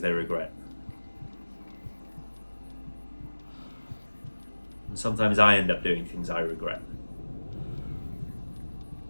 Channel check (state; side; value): inverted; both; correlation -1.00